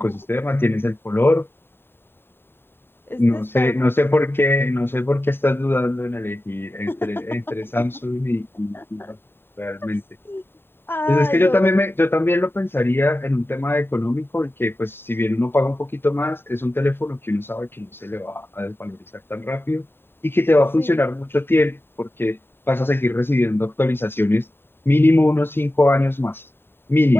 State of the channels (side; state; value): right; late; 0.11 ms